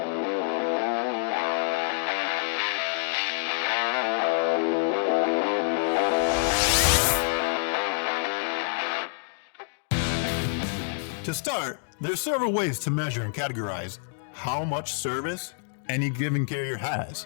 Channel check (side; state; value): right; silent; digital silence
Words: To start, there's several ways to measure and categorize how much service any given carrier has.